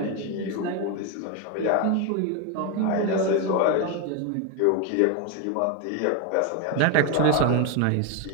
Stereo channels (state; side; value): different; both; correlation 0.02